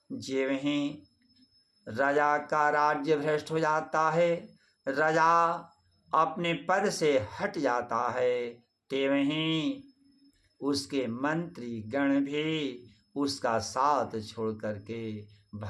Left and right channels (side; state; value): both; identical; correlation 1.00